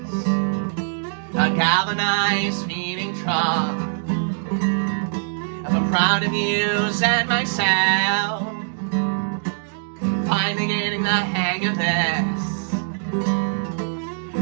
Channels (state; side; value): silent; left; digital silence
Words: a galvanized feeding trough of a proud of yous and myself, finally getting the hang of this.